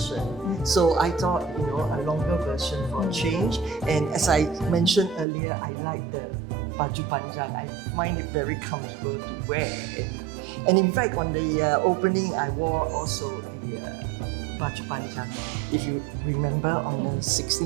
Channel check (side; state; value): left; drops out; at 5.2 s